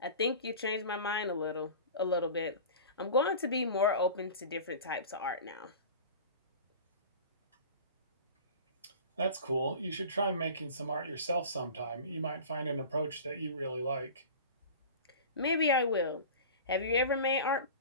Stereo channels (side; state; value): both; inverted; correlation -0.37